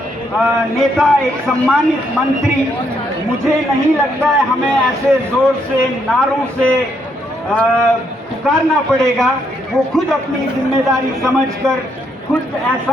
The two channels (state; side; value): normal; both; correlation 0.75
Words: नेता, एक सम्मानित मंत्री, मुझे नहीं लगता है हमें ऐसे जोर से, नारों से पुकारना पड़ेगा। वो खुद अपनी जिम्मेदारी समझकर खुद